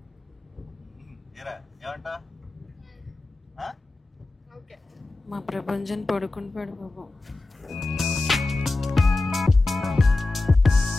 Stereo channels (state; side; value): quieter; right; 3.1 dB